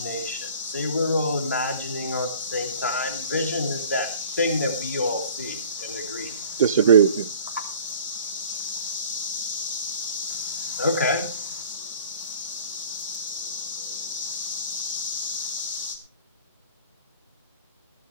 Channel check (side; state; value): both; inverted; correlation -0.47